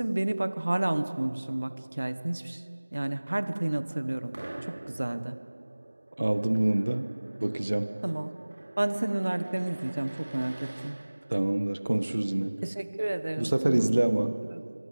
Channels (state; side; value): inverted; both; correlation -1.00